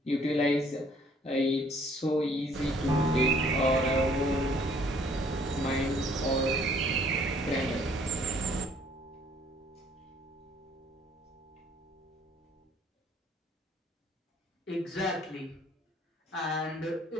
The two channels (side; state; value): both; normal; correlation 0.60